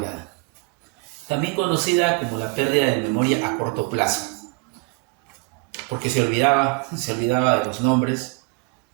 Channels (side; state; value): left; quieter; 30.7 dB